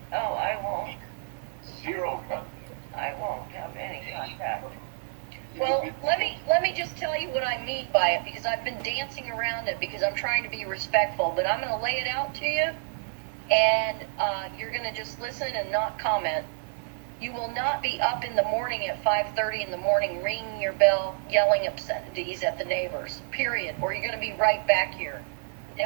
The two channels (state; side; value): silent; left; digital silence